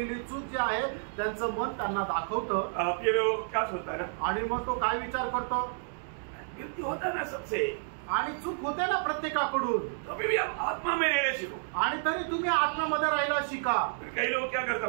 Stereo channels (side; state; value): left; silent; digital silence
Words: चूक जी आहे त्यांचं मन त्यांना दाखवतं. फिर क्या सोचता है ना, आणि मग तो काय विचार करतो. गिल्टी होता ना सबसे. आणि चूक होते ना प्रत्येकाकडून, तभी भी हम आत्मा में रहने सीखो। आणि तरी तुम्ही आत्म्यामध्ये राहायला शिका। कई लोग क्या करते